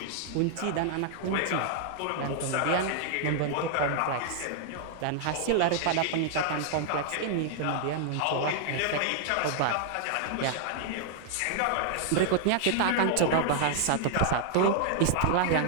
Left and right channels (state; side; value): different; both; correlation 0.00